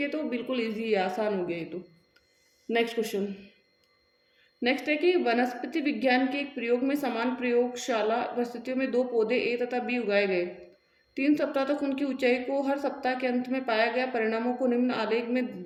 है, तो बिल्कुल ईजी है, आसान हो गया ये तो। Next question. नेक्स्ट है कि वनस्पति विज्ञान के एक प्रयोग में समान प्रयोगशाला परिस्थितियों में 2 पौधे ए तथा बी उगाए गए। 3 सप्ताह तक उनकी ऊंचाई को हर सप्ताह के अंत में पाया गया परिणामों को निम्न आलेख में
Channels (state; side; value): identical; both; correlation 1.00